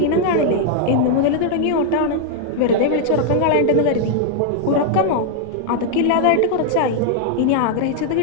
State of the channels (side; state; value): both; different; correlation 0.00